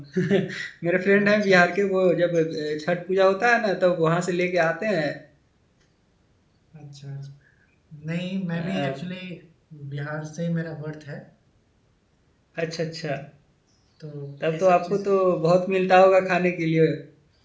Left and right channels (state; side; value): identical; both; correlation 1.00